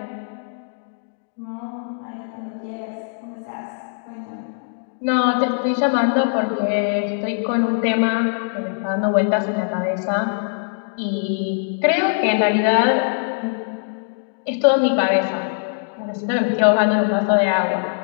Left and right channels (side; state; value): right; silent; digital silence